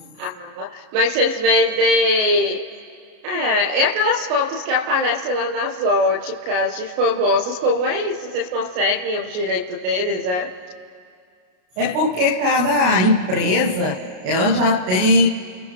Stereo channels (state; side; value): late; left; 33 ms